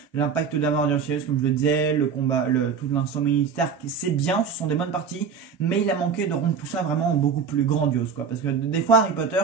L'impact d'Amor Sirius, comme je le disais, le combat, tout l'instant militaire, c'est bien, ce sont des bonnes parties, mais il a manqué de rendre tout ça vraiment beaucoup plus grandiose, quoi. Parce que des fois Harry Potter,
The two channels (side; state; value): left; quieter; 6.2 dB